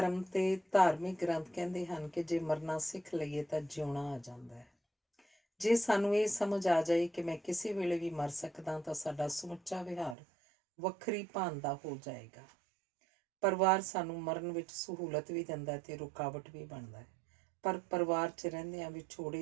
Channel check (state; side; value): drops out; left; at 10.2 s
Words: ਤੇ ਧਾਰਮਿਕ ਗ੍ਰੰਥ ਕਹਿੰਦੇ ਹਨ ਕਿ ਜੇ ਮਰਨਾ ਸਿੱਖ ਲਈਏ ਤਾਂ ਜਿਉਣਾ ਆ ਜਾਂਦਾ ਹੈ। ਜੇ ਸਾਨੂੰ ਇਹ ਸਮਝ ਆ ਜਾਏ ਕਿ ਮੈਂ ਕਿਸੇ ਵੇਲੇ ਵੀ ਮਰ ਸਕਦਾ ਤਾਂ ਸਾਡਾ ਸਮੁੱਚਾ ਵਿਹਾਰ ਵੱਖਰੀ ਭਾਨ ਦਾ ਹੋ ਜਾਏਗਾ। ਪਰਿਵਾਰ ਸਾਨੂੰ ਮਰਨ ਵਿੱਚ ਸਹੂਲਤ ਵੀ ਦਿੰਦਾ ਤੇ ਰੁਕਾਵਟ ਵੀ ਬਣਦਾ ਹੈ, ਪਰ ਪਰਿਵਾਰ 'ਚ ਰਹਿੰਦਿਆਂ